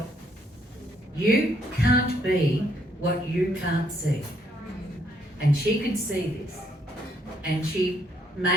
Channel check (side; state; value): both; normal; correlation 0.70